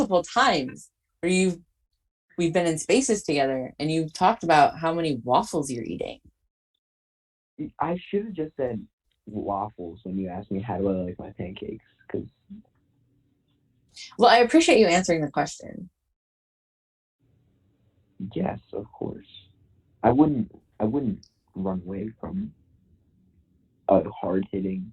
times where we've been in spaces together and you've talked about how many waffles you're eating. I should have just said waffles when you asked me how do I like my pancakes. Because Well, I appreciate you answering the question. yes, of course, I wouldn't. I wouldn't run away from a hard hitting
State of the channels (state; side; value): identical; both; correlation 1.00